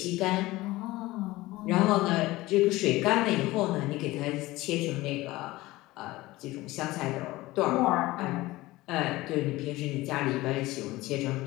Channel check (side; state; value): right; quieter; 18.9 dB